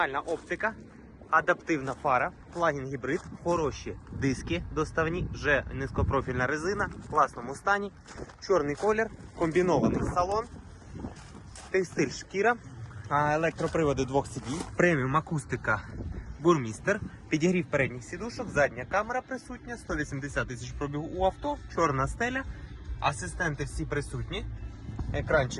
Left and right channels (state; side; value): identical; both; correlation 1.00